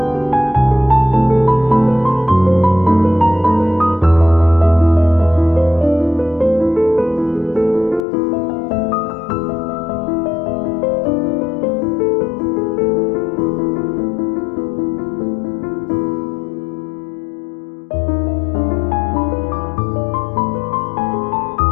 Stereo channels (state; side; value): drops out; right; at 8.1 s